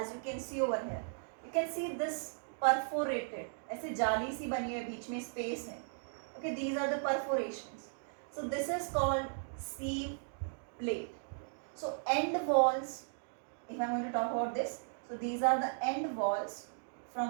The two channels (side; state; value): left; silent; digital silence